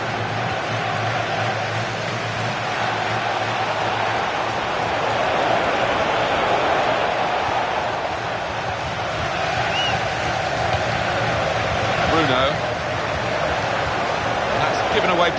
That's given away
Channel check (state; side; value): identical; both; correlation 1.00